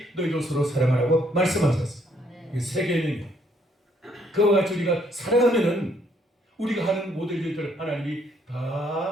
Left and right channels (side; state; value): both; normal; correlation 0.68